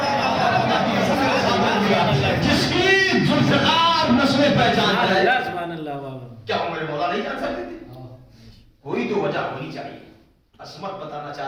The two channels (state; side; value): identical; both; correlation 1.00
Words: جس کی ذوالفقار نسلیں پہچان ہے, کیا ہمارے مولا نہیں جان سکتے تھے؟ کوئی تو وجہ ہونی چاہیے. عصمت بتانا